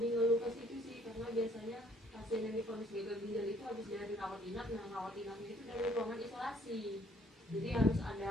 ngeluh ke situ sih, karena biasanya pasien yang divonis gagal ginjal itu habis dari rawat inap, nah rawat inapnya itu dari ruangan isolasi, jadi harus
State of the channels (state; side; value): normal; both; correlation 0.62